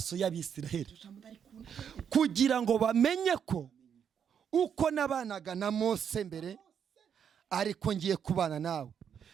y'Abisiraheli kugira ngo bamenye ko uko nabanaga na Mose mbere ariko ngiye kubana nawe.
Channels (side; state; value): left; quieter; 7.9 dB